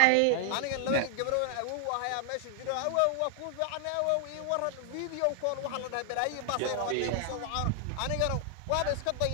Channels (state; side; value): different; both; correlation 0.00